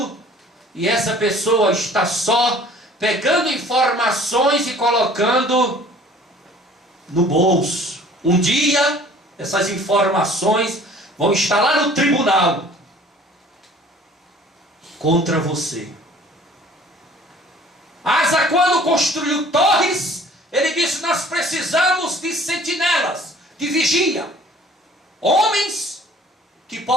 e essa pessoa está só pegando informações e colocando no bolso. Um dia, essas informações vão estar lá no tribunal contra você. Asa, quando construiu torres, ele disse, nós precisamos de sentinelas, de vigia. Homens que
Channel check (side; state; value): both; normal; correlation 0.51